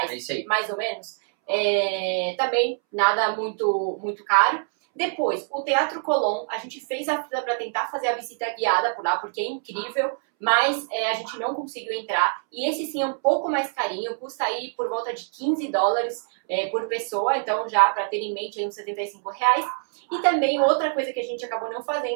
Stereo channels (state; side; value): silent; left; 62 dB below the other